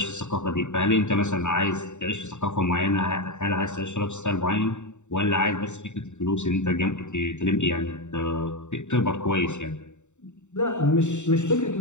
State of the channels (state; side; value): late; right; 0.84 ms